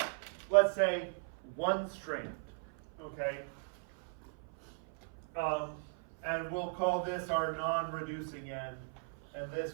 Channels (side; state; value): left; silent; 53 dB below the other